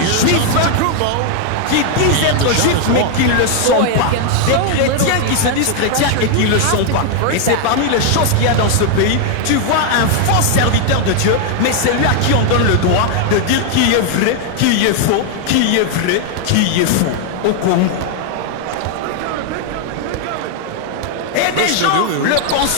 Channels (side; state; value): both; different; correlation 0.00